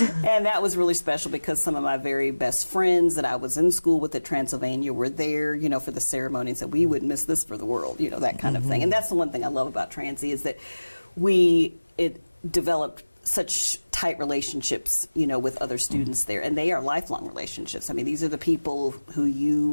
And that was really special because some of my very best friends that I was in school with at Transylvania were there, you know, for the ceremony and said, we wouldn't miss this for the world, you know, that kind of thing. And that's the one thing I love about Transy is that it developed such tight relationships, you know, with other students there, and they are lifelong relationships. I mean, these are the people who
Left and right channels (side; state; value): both; inverted; correlation -1.00